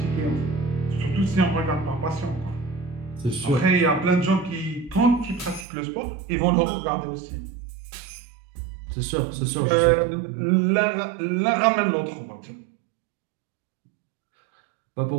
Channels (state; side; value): drops out; left; at 5.7 s